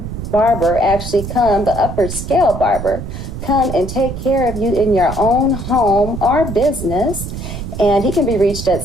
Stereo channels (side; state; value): right; noise; rumble, 8 dB below the sound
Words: barber actually come, the upper scale barber, come and take care of you in your own home or business. And he can be reached